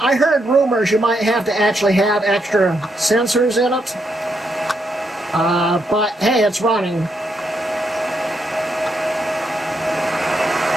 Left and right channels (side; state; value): both; normal; correlation 0.79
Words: heard rumors you might have to actually have extra sensors in it. But hey, it's running.